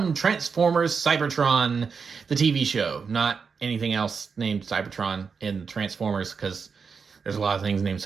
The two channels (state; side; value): quieter; left; 5.6 dB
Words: Transformers Cybertron, the TV show. Not anything else named Cybertron in Transformers, because there's a lot of things named